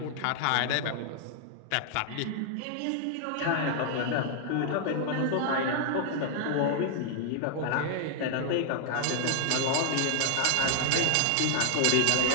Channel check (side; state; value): both; different; correlation -0.01